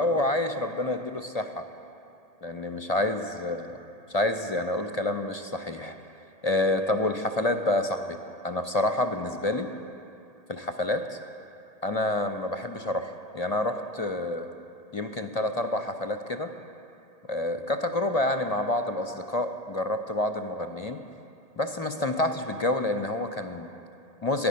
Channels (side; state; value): right; late; 1.8 ms